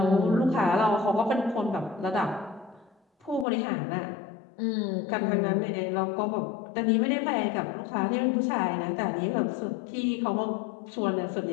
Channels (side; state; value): right; drops out; at 3.5 s